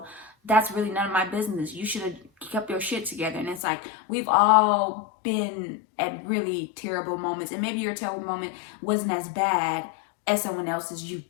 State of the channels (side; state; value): right; drops out; at 3.6 s